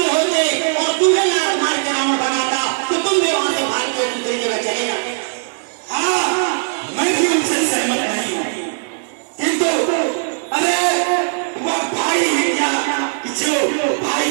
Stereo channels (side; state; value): left; silent; digital silence